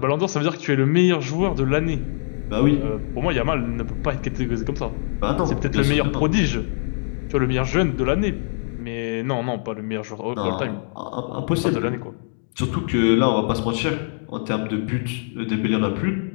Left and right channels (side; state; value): right; silent; digital silence